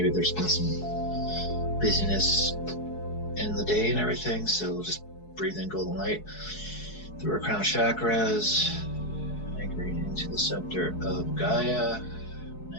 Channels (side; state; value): right; late; 4.7 ms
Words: there's been some busyness in the day and everything, so we'll just breathe in golden light through our crown chakras, anchoring into the center of Gaia,